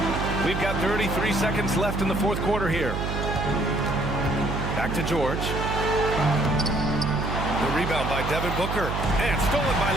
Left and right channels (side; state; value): right; noise; hum, 3 dB below the sound